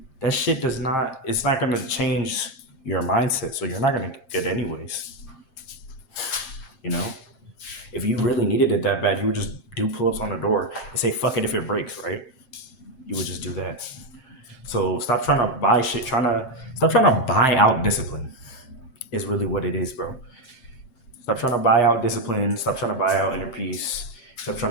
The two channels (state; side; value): late; right; 7.6 ms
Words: That shit does not, it's not gonna change your mindset. So you're not gonna get it anyways. You know? If you really needed it that bad, you would just do pull-ups on the door and say fuck it if it breaks, right? You would just do that. So stop trying to buy shit, stop trying to buy out discipline is really what it is, bro. Stop trying to buy out discipline. Stop trying to buy out inner peace. Stop